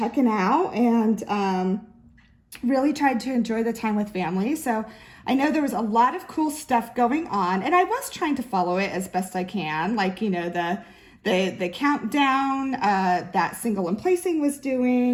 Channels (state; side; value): identical; both; correlation 1.00